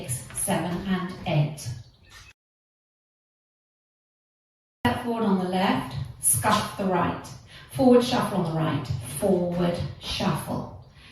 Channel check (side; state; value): both; identical; correlation 1.00